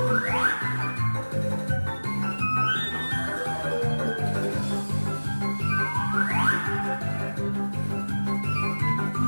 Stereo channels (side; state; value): both; inverted; correlation -1.00